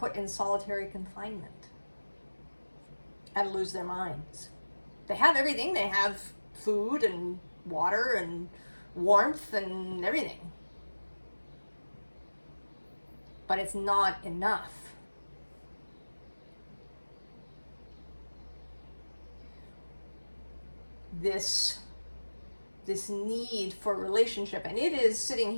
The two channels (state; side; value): inverted; both; correlation -1.00